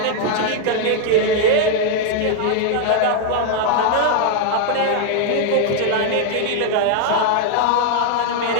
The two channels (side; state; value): both; different; correlation 0.00